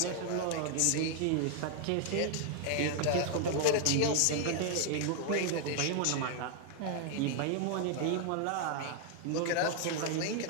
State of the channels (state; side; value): different; both; correlation 0.00